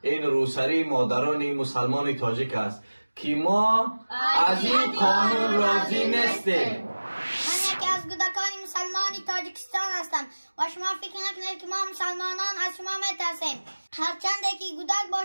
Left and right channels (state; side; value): inverted; both; correlation -1.00